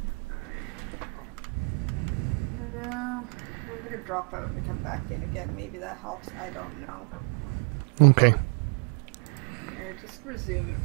No, I'm gonna drop out and come back in again. Maybe that helps. I don't know. Okay. Here, just resume it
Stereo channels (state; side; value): quieter; left; 34.6 dB